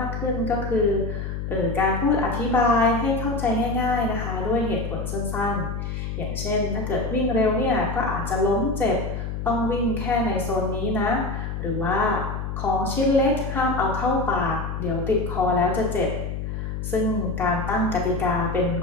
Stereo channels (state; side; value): noise; left; hum, 4 dB below the sound